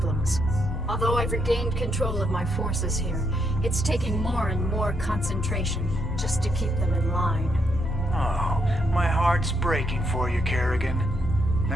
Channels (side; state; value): left; noise; hum, 20 dB below the sound